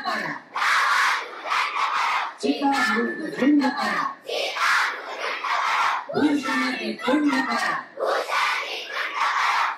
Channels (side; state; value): both; identical; correlation 1.00